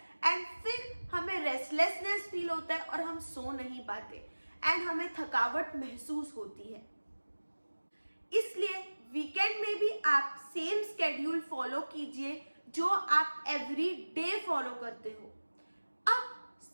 एंड फिर हमें रेस्टलेसनेस फील होता है और हम सो नहीं पाते एंड हमें थकावट महसूस होती है। इसलिए वीकेंड में भी आप सेम स्केड्यूल फॉलो कीजिए जो आप एवरी डे फॉलो करते हो। अब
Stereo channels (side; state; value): both; inverted; correlation -1.00